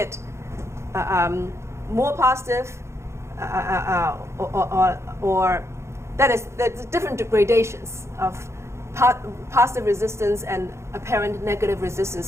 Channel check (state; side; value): late; left; 0.13 ms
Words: more positive, or that is, there's different gradations of positive resistance and apparent negative